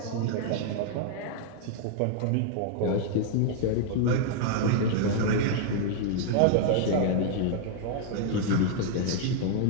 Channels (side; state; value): both; different; correlation -0.01